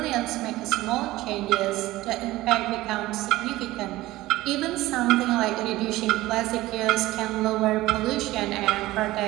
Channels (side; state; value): left; quieter; 17.6 dB